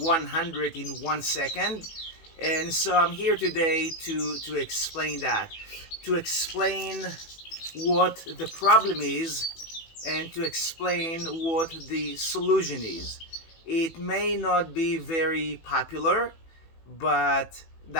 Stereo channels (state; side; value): late; right; 18 ms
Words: in 1 second? And so I'm here today to explain that, to explain what the problem is and to explain what the solution is. It may not be very popular, but